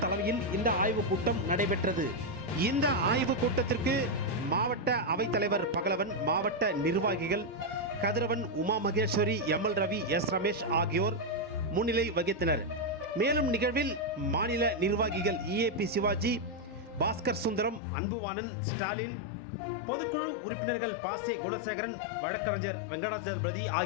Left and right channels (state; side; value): drops out; right; at 17.8 s